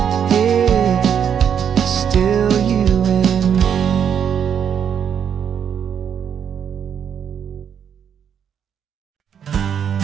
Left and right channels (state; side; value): quieter; left; 8.2 dB